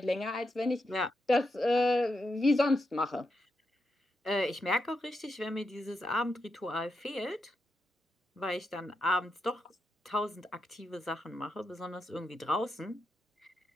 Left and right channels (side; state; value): both; normal; correlation 0.85